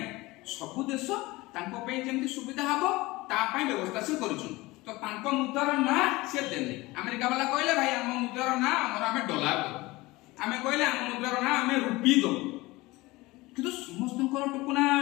सब देश तांको पे जेमति सुविधा हबो ता पई व्यवस्था से करूछु तो तांको मुद्रार ना से देले अमेरिका वाला कहले भाई हम मुद्रार ना हमर हमें डॉलर दो हमें कहले हम मुद्रार ना हमें रुपी दो किंतु समस्त टुकुना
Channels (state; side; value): quieter; right; 21.0 dB